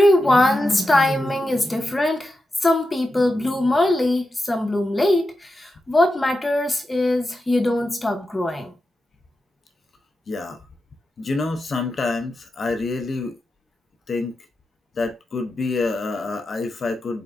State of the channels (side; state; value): both; normal; correlation 0.90